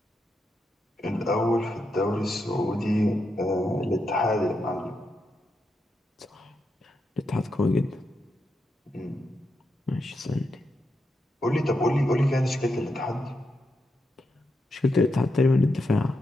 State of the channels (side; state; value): both; normal; correlation 0.84